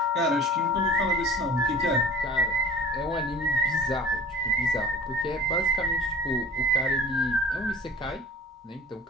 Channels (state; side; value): normal; both; correlation 0.42